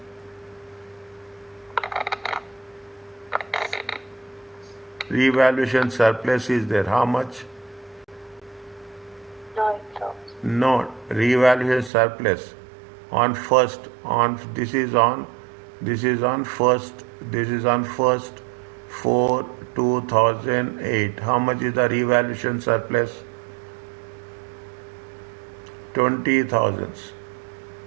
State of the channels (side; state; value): left; drops out; at 11.9 s